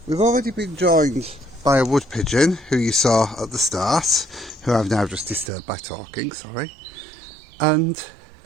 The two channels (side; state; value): left; drops out; at 5.5 s